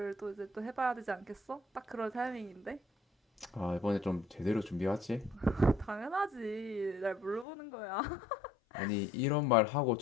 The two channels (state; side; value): drops out; right; at 7.5 s